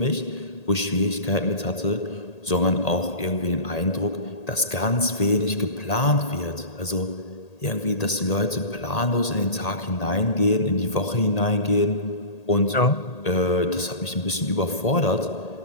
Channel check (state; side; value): late; right; 1.8 ms